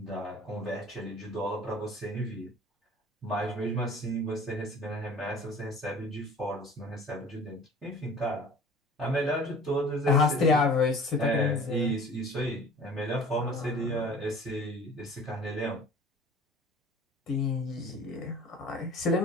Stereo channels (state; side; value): normal; both; correlation 0.46